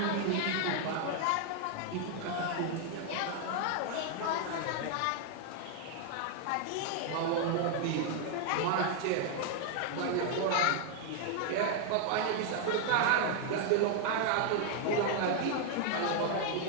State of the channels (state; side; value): different; both; correlation 0.00